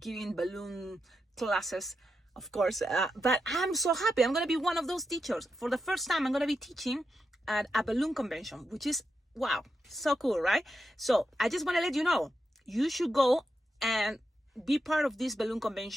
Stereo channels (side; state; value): both; normal; correlation 0.86